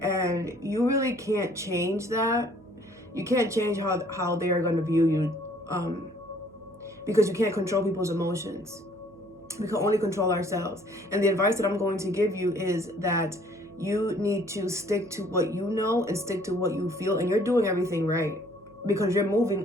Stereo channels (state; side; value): noise; right; hum, 25 dB below the sound